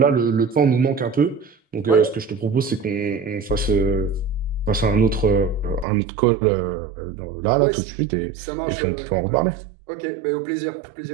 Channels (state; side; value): drops out; left; at 5.9 s